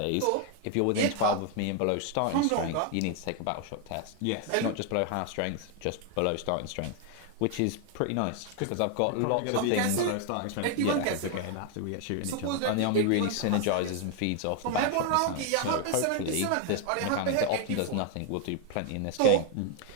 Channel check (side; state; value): both; different; correlation 0.01